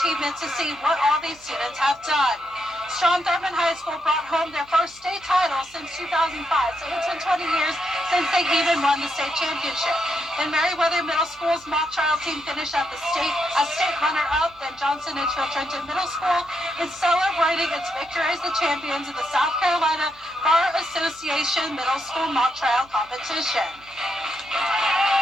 to see what all these students have done. Strom Thurmond High School brought home their first state title since 2005, so it's been 20 years since they even won the state championship. And Meriwether Middle School's mock trial team finished at the state as state runner-up. Then Johnson Edgefield Trenton Middle School is celebrating its victory as the champions of the South Carolina Bar Association Middle School mock trial competition.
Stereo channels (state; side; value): noise; right; hum, 27 dB below the sound